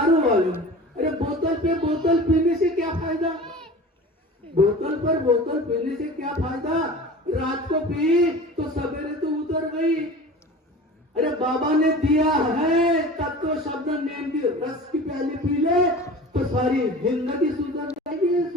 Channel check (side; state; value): both; normal; correlation 0.38